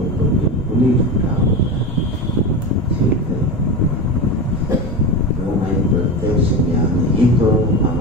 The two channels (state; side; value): normal; both; correlation 0.23